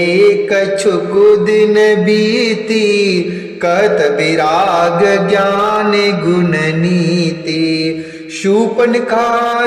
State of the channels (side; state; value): both; identical; correlation 1.00